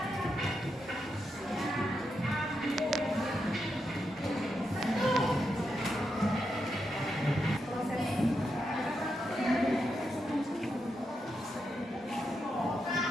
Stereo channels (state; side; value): normal; both; correlation 0.84